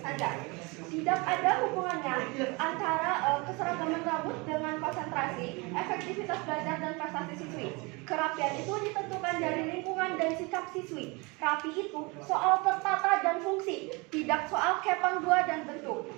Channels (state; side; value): quieter; left; 27.3 dB